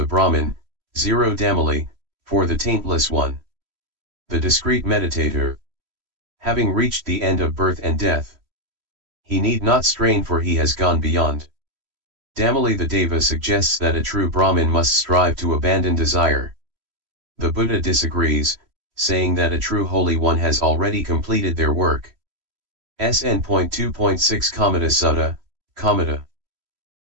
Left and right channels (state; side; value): late; left; 3.1 ms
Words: Brahmin, Damali, for the taintless one. The discreet meditator. having reached the end of birth and death. He need not strain, for he has gone beyond. Damali the Deva suggests that a true Brahmin must strive to abandon desire. The Buddha disagrees, saying that a true Holy One has already completed their work. SN.2.1-SN.2.10 Sutta, Kamata.